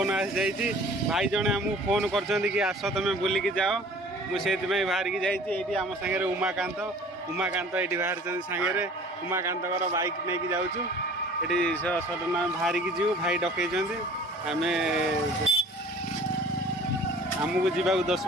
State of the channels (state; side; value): normal; both; correlation 0.48